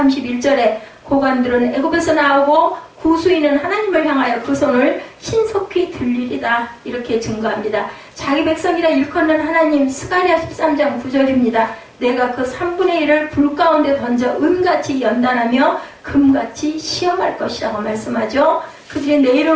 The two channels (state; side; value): identical; both; correlation 1.00